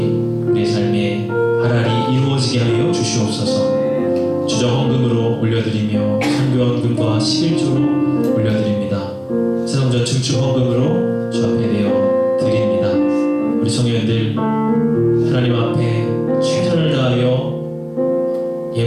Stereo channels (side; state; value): both; identical; correlation 1.00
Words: 우리의 삶에 하나리 이루어지게 하여 주시옵소서. 주정헌금으로 올려드리며 선교헌금과 11조로 올려드립니다. 세성전 증축헌금으로 주 앞에 내어 드립니다. 우리 성도님들 하나님 앞에 최선을 다하여